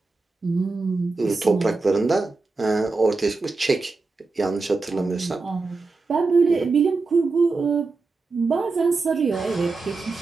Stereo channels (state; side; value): quieter; left; 3.9 dB